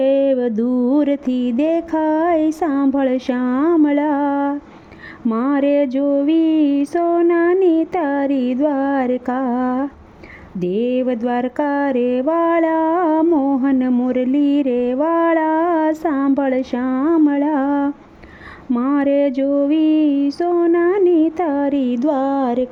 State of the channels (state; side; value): identical; both; correlation 1.00